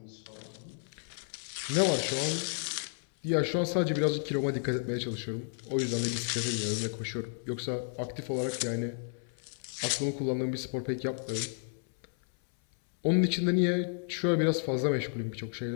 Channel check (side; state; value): right; silent; 56 dB below the other